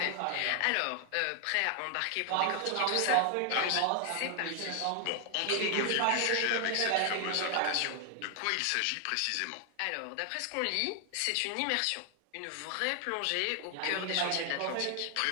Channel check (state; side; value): different; both; correlation 0.00